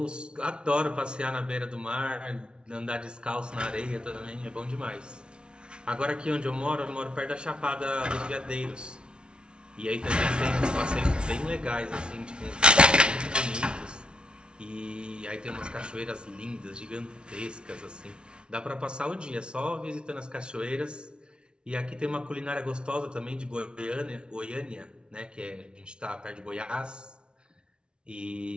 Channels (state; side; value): late; left; 0.056 ms